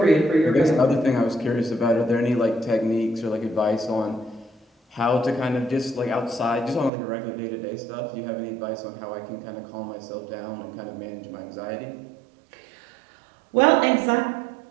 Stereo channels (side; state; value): left; drops out; at 6.9 s